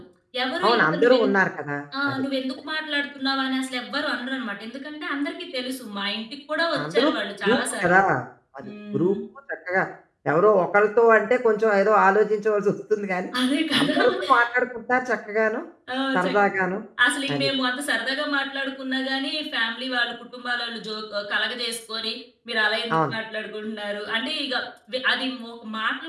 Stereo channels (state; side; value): identical; both; correlation 1.00